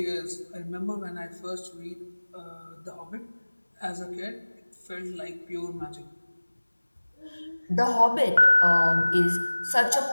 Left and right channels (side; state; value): both; inverted; correlation -1.00